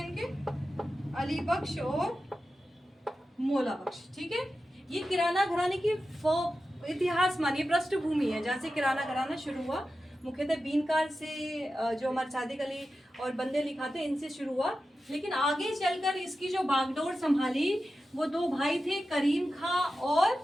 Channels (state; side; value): normal; both; correlation 0.92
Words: अली बख्श और मौला बख्श। ठीक है, ये किराना घराने की इतिहास मानिए पृष्ठभूमि है, जहाँ से किराना घराना शुरू हुआ। मुख्यतः बीनकार से, जो हमारे सादिक अली और बंदे अली खां थे, इनसे शुरू हुआ। लेकिन आगे चलकर इसकी जो बागडोर संभाली वो दो भाई थे, करीम खां,